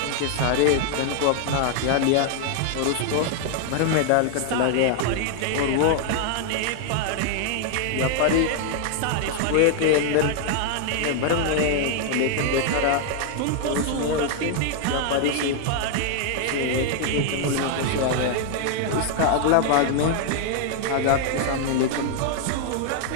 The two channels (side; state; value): both; different; correlation 0.00